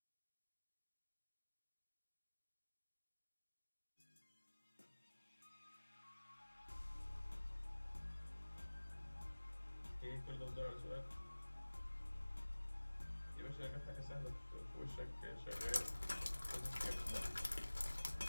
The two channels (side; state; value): both; inverted; correlation -1.00